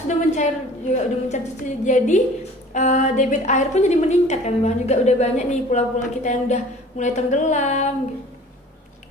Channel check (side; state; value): both; normal; correlation 0.47